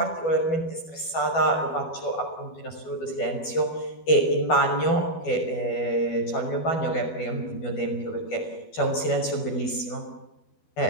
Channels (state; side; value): late; right; 12 ms